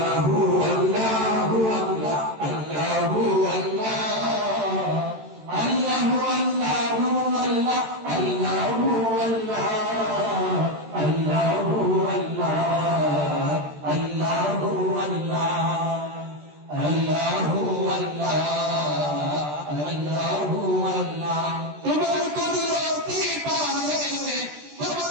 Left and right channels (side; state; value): left; late; 13 ms